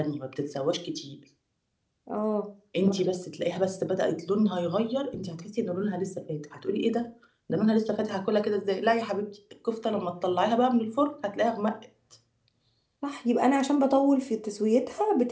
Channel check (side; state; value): both; identical; correlation 1.00